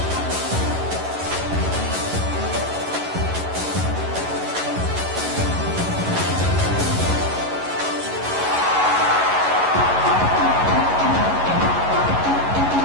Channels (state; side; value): late; left; 11 ms